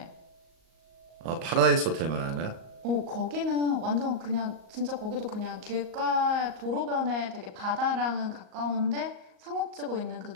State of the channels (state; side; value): late; left; 38 ms